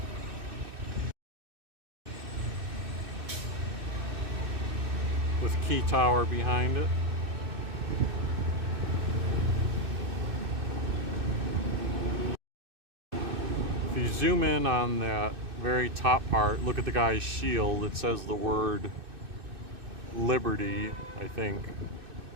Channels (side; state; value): left; late; 2.6 ms